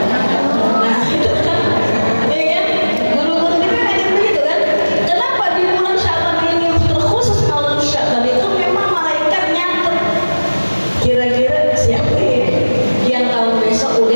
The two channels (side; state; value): both; inverted; correlation -1.00